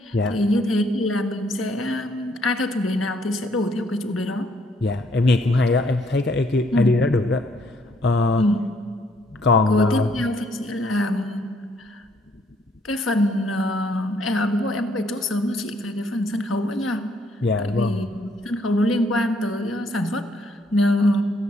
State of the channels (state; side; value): normal; both; correlation 0.68